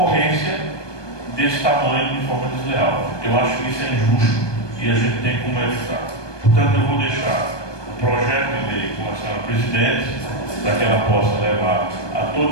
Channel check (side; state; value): right; late; 1.2 ms